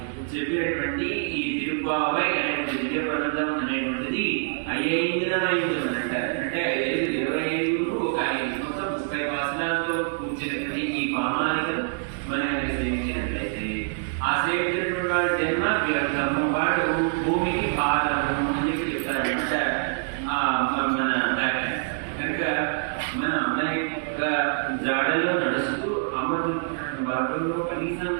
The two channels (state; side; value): silent; left; digital silence